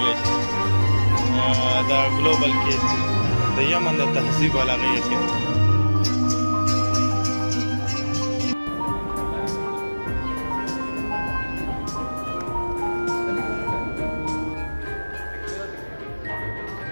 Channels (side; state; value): both; inverted; correlation -1.00